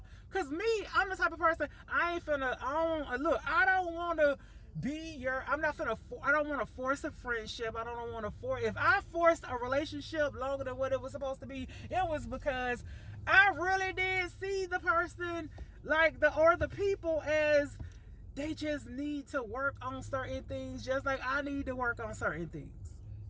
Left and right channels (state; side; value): identical; both; correlation 1.00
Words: Because me, I'm the type of person, I don't want to I'm not gonna, I don't want to force a friendship. I don't want to force, if I forced a relationship longer than what it was supposed to be, it was because I really did see the person, like the people, as they just need to work on certain things, just like I need to work on certain things.